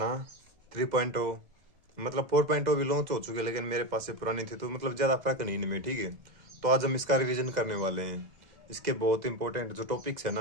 3.0। मतलब 4.0 भी लॉन्च हो चुके हैं, लेकिन मेरे पास से पुरानी थी तो मतलब ज़्यादा फर्क नहीं इनमें। ठीक है, तो आज हम इसका रिवीजन करने वाले हैं। इसके बहुत इंपॉर्टेंट जो टॉपिक्स है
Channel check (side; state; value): left; late; 2.0 ms